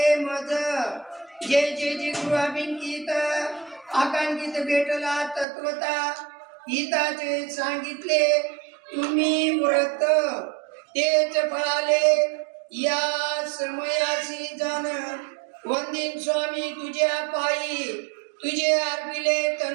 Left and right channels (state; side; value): drops out; left; at 5.5 s